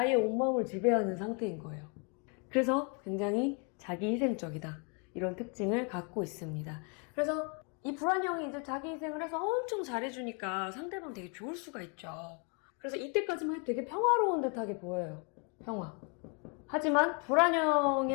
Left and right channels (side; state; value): right; quieter; 35.2 dB